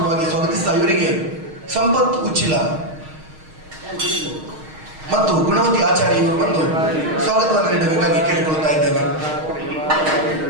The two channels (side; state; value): left; late; 6.4 ms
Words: ಸ್ವಾಗತಿಸ್ತಾ ಇವರಿಗೆ ಸಂಪತ್ ಉಚ್ಚಿಲ ಮತ್ತು ಗುಣವತಿ ಆಚಾರ್ಯ ಇವರು ಬಂದು ಸ್ವಾಗತವನ್ನು ನೀಡಬೇಕಾಗಿ ಕೇಳಿಕೊಳ್ತಾ ಇದ್ದೇವೆ.